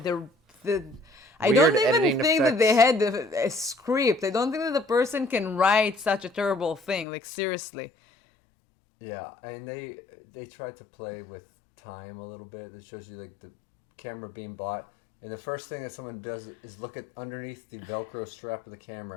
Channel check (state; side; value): drops out; right; at 7.1 s